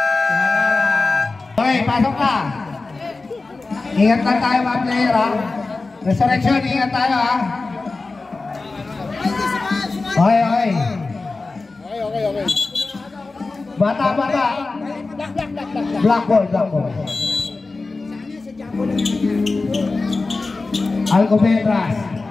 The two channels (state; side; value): quieter; right; 3.7 dB